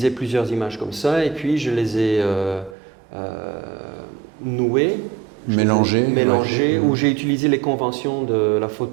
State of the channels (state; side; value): drops out; left; at 2.8 s